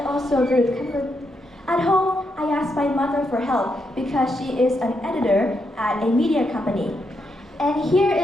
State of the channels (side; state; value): both; normal; correlation 0.81